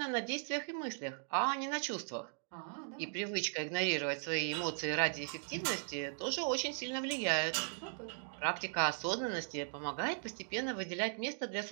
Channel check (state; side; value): silent; left; digital silence